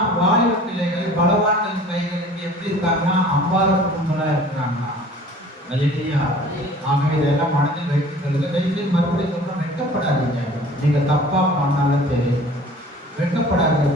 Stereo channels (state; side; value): normal; both; correlation 0.47